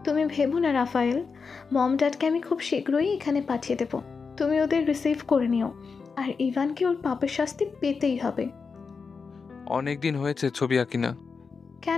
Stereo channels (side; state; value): right; quieter; 5.1 dB